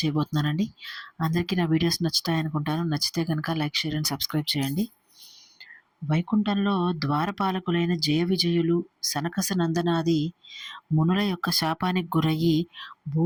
చేయబోతున్నానండి. అందరికీ నా వీడియోస్ నచ్చుతాయనుకుంటాను. నచ్చితే కనుక లైక్, షేర్ అండ్ సబ్స్క్రైబ్ చేయండి. వైకుంఠంలో ద్వారపాలకులైన జయ విజయులు సనకస నందనాది మునుల యొక్క శాపానికి గురయ్యి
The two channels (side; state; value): both; identical; correlation 1.00